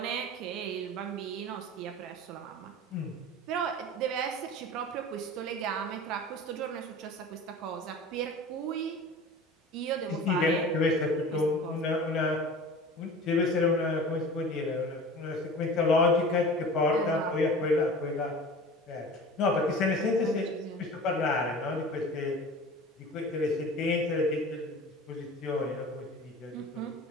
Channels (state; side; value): normal; both; correlation 0.38